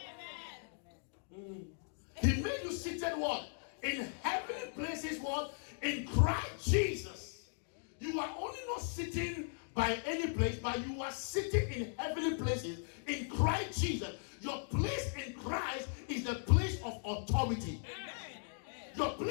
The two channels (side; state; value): right; silent; digital silence